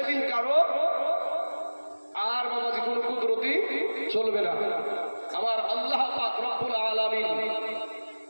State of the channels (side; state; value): both; inverted; correlation -1.00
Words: কারো আর বাবাজি কোন কুদরতি চলবে না। আমার আল্লাহ পাক রব্বুল আলামিন